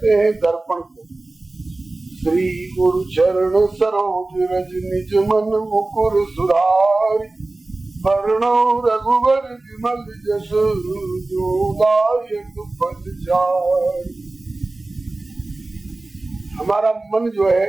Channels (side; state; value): left; quieter; 3.0 dB